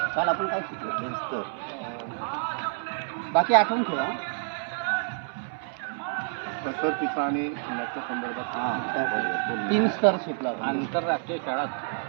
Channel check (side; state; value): left; silent; 59 dB below the other